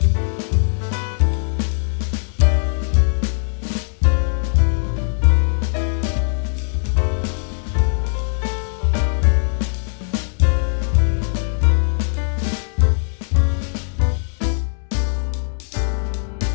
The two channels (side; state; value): right; silent; digital silence